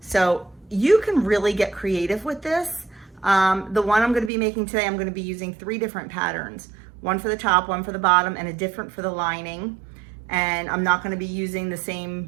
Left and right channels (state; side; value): drops out; left; at 4.3 s